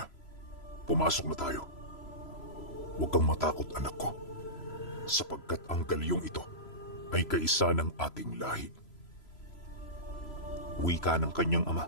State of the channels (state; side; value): late; right; 3.0 ms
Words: Pumasok na tayo. Huwag kang matakot, anak ko. Sapagkat ang galyong ito ay kaisa ng ating lahi. Wika ng kanyang ama